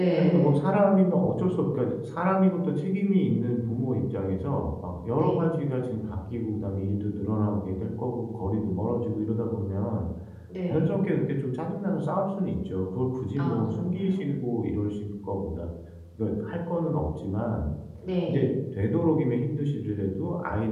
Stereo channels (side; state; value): both; identical; correlation 1.00